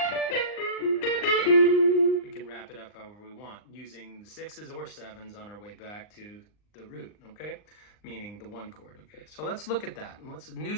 we can wrap it up however we want, using the 6s or 7s on our way back to the root, okay? Meaning the 1 chord, okay? So let's look at that. And what's a new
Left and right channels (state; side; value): late; right; 39 ms